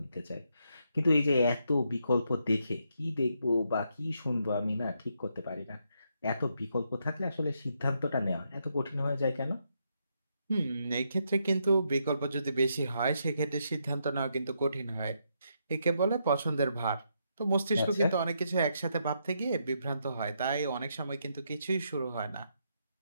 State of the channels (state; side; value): inverted; both; correlation -0.78